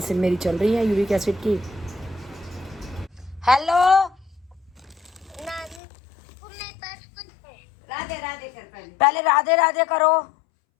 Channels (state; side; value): drops out; right; at 5.8 s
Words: मेरी चल रही है यूरिक एसिड की। हेलो राधे राधे कर पहले। पहले राधे राधे करो।